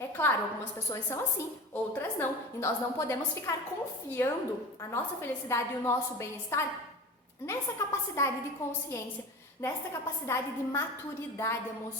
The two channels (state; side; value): normal; both; correlation 0.33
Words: claro, algumas pessoas são assim, outras não, e nós não podemos ficar confiando a nossa felicidade e o nosso bem-estar nessa capacidade de consciência, nessa capacidade de maturidade